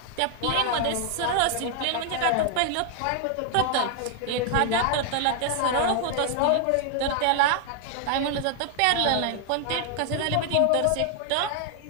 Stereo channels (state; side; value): different; both; correlation 0.00